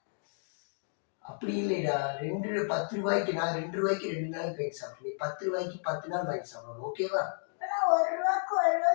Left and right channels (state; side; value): silent; right; 56 dB below the other